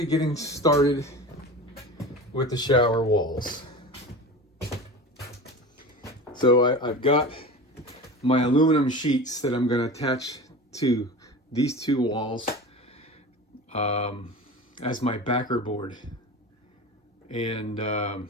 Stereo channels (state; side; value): normal; both; correlation 0.32